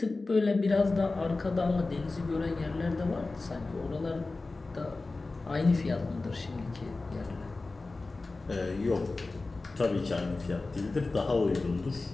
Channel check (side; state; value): right; quieter; 3.5 dB